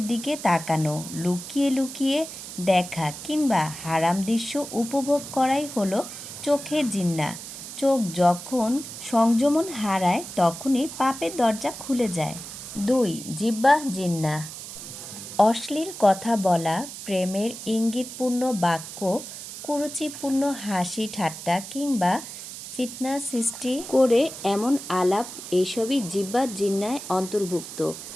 দিকে তাকানো, লুকিয়ে লুকিয়ে দেখা কিংবা হারাম দৃশ্য উপভোগ করাই হলো চোখের জিন্না। চোখ যখন সংযমন হারায় তখনই পাপের দরজা খুলে যায়। ২. জিহ্বা জিন্না। অশ্লীল কথা বলা, প্রেমের ইঙ্গিতপূর্ণ বাক্য, কুরুচিপূর্ণ হাসি ঠাট্টা কিংবা ফিতনা সৃষ্টি করে এমন আলাপ, এসবই জিহ্বার জিন্নায় অন্তর্ভুক্ত।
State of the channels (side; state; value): right; noise; hiss, 11 dB below the sound